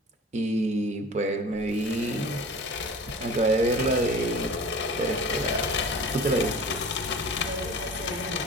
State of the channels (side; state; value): both; normal; correlation 0.39